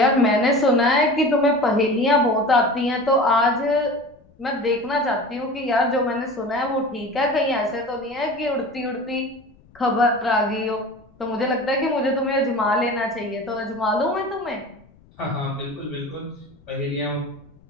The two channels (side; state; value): left; noise; rumble, 28 dB below the sound